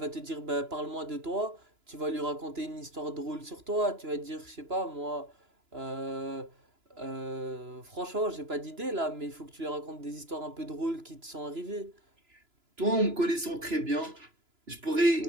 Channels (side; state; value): left; late; 2.9 ms